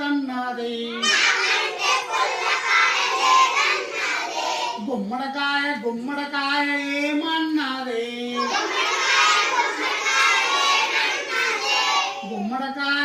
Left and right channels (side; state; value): both; identical; correlation 1.00